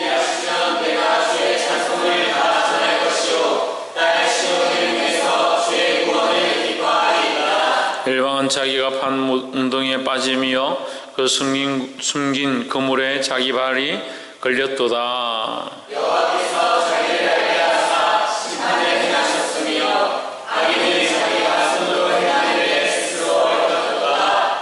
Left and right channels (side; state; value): both; identical; correlation 1.00